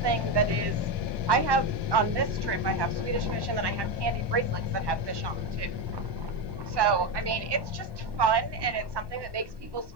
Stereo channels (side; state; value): left; late; 1.1 ms